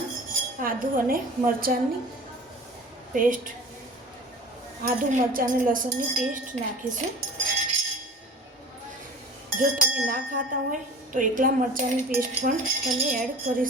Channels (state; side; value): normal; both; correlation 0.40